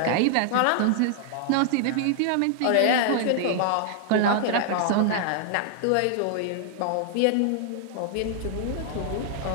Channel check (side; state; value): both; different; correlation 0.00